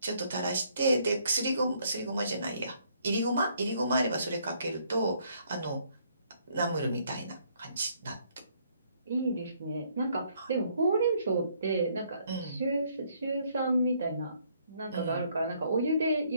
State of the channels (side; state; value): both; inverted; correlation -0.68